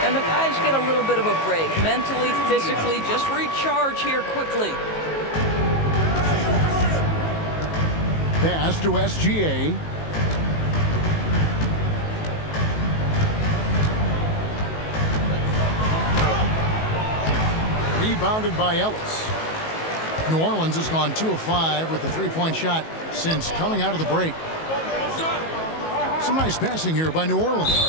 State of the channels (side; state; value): right; late; 19 ms